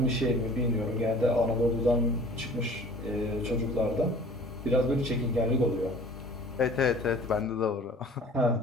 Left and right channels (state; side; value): normal; both; correlation 0.47